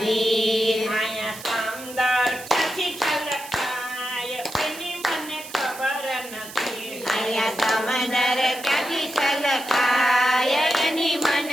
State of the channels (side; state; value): right; noise; hiss, 14 dB below the sound